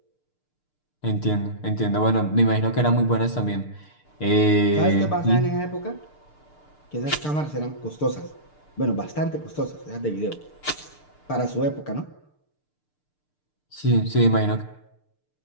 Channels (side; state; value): right; late; 6.7 ms